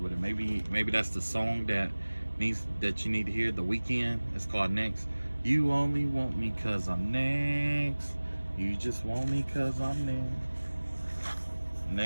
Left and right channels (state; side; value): inverted; both; correlation -1.00